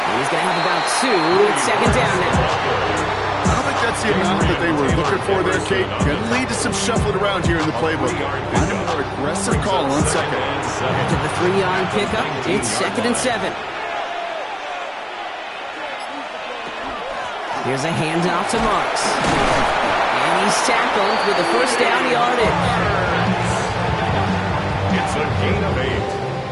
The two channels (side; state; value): both; identical; correlation 1.00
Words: he's going to have about 2. It's second down now. I don't think that's the amount that they were looking for there, Kate. Going to lead to some shuffling around here in the playbook. Find a more aggressive call on second. After the 3-yard pickup, it's 2nd and 7. Here's a handoff to Marks. And he's tackled with the first down yardage. It's a gain of 8.